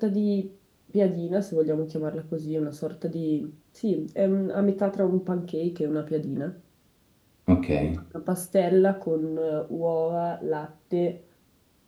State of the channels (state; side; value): identical; both; correlation 1.00